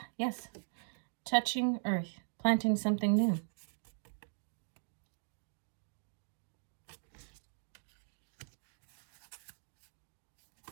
yes. Touching earth, planting something new.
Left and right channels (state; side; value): silent; left; digital silence